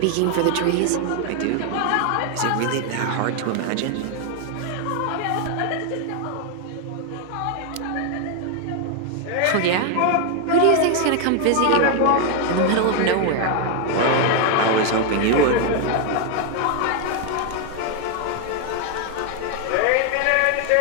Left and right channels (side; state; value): both; different; correlation 0.00